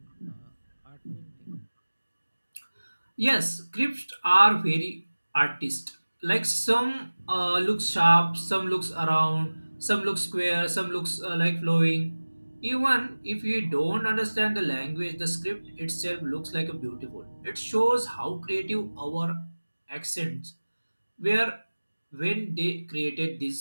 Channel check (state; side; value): inverted; both; correlation -1.00